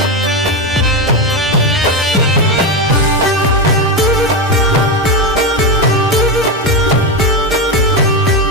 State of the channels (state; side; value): normal; both; correlation 0.12